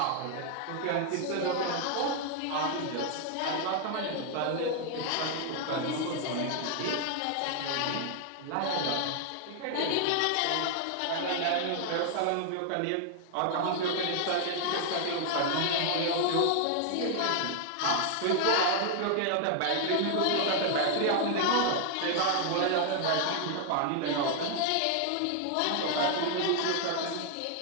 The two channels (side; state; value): both; different; correlation 0.00